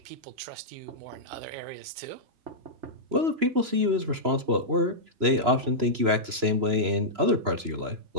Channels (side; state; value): left; late; 3.0 ms